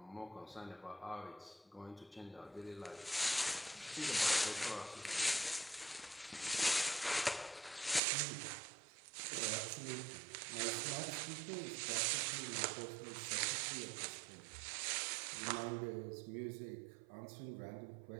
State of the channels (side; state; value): left; drops out; at 8.0 s